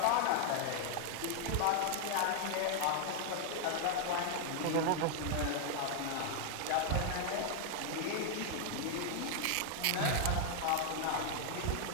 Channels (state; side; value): different; both; correlation 0.00